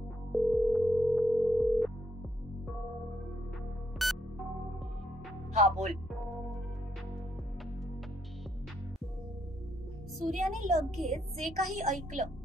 हा, बोल. सूर्याने लगेच जे काही ऐकलं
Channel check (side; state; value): both; normal; correlation 0.75